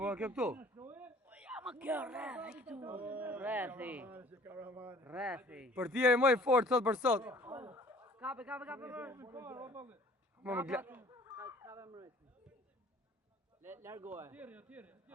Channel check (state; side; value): normal; both; correlation 0.52